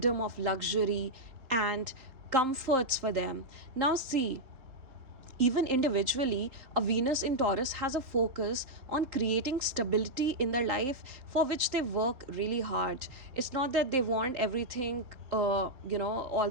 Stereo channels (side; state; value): left; late; 3.8 ms